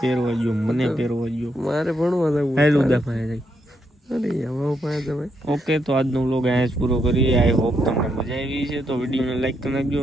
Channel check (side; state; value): both; normal; correlation 0.79